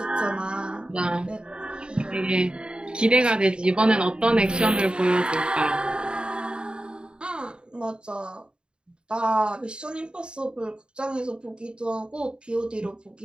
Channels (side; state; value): left; late; 0.051 ms